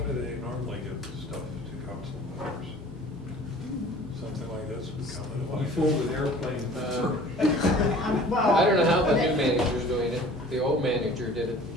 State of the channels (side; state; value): both; normal; correlation 0.47